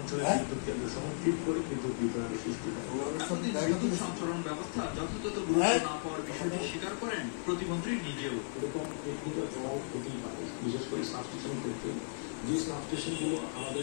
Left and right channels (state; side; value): silent; right; 54 dB below the other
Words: বিদ্যুৎ কেন্দ্র সহ ঠিক করে বিদ্যুৎ বিভ্রান্তি সৃষ্টি করে। বিদ্যুৎ সঞ্চালন ব্যবস্থা যথাযথ গুরুত্ব না পাওয়ার বিষয়টি স্বীকার করেন প্রতিমন্ত্রী নিজেও। এরকম টেকনিক্যাল জবাব হতেই পারে, বিশেষ করে সাবস্টেশন ক্ষেত্রে যে সাবস্টেশনগুলো